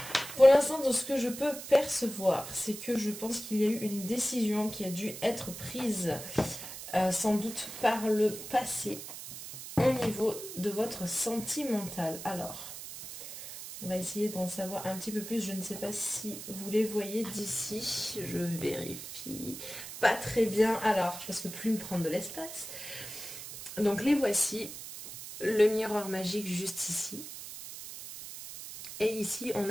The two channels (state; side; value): noise; right; hiss, 11 dB below the sound